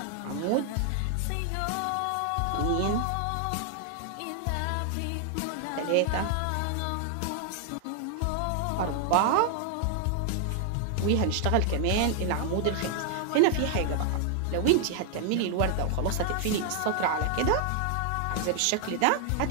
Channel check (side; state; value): both; different; correlation 0.00